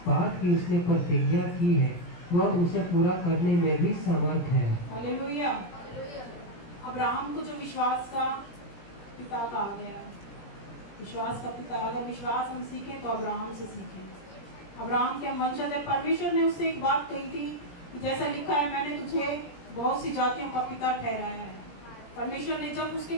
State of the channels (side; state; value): right; late; 17 ms